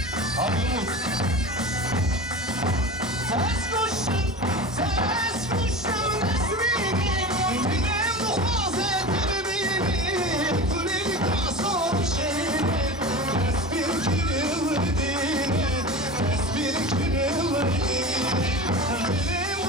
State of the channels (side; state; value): both; normal; correlation 0.31